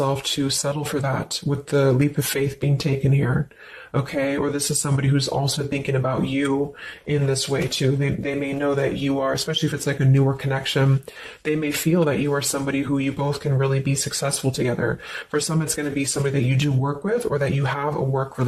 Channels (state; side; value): identical; both; correlation 1.00